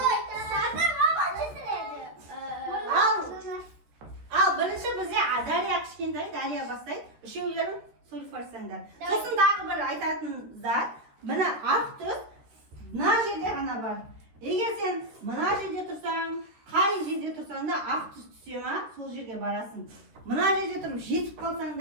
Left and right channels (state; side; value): late; left; 13 ms